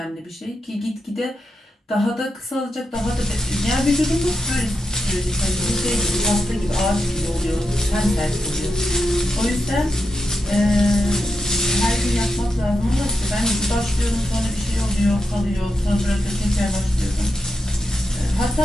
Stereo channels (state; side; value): normal; both; correlation 0.87